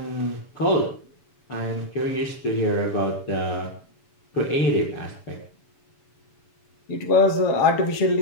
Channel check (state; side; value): late; right; 7.0 ms